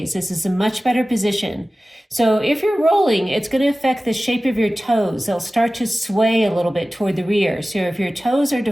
This is a much better position. So if you're rolling, it's going to affect the shape of your toes. They'll start to sway a little bit toward the rear. So if your toes are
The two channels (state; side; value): normal; both; correlation 0.96